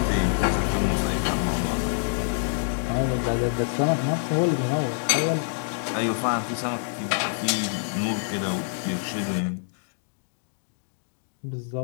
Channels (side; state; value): right; silent; digital silence